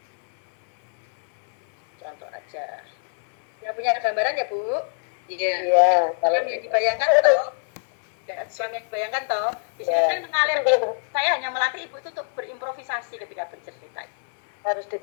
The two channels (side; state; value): right; silent; digital silence